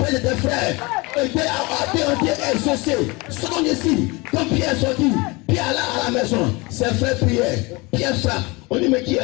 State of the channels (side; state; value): right; quieter; 25.4 dB